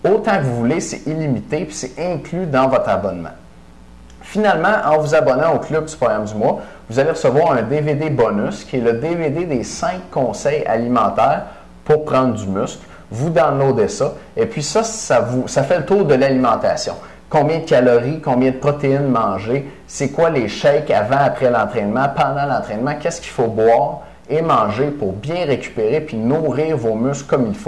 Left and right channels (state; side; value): identical; both; correlation 1.00